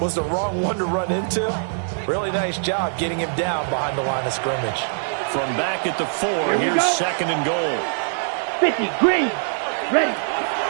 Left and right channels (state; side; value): silent; left; digital silence